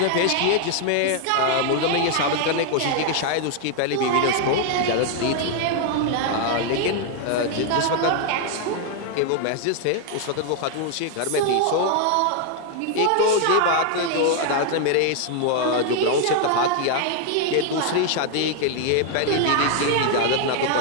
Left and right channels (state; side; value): different; both; correlation 0.00